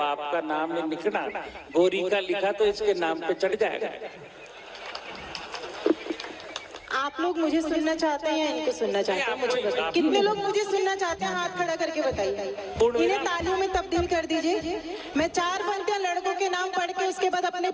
का नाम नहीं लिखना, गोरी का लिखा तो इसके नाम पे चढ़ जाएगा। आप लोग मुझे सुनना चाहते हैं या इनको सुनना चाहते हैं? मुझे बताइए, कितने लोग मुझे सुनना चाहते हैं? हाथ खड़ा करके बताइए। इन्हें तालियों में तब्दील कर दीजिए। मैं 4 पंक्तियां लड़कों के नाम पढ़ के उसके बाद अपने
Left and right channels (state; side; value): identical; both; correlation 1.00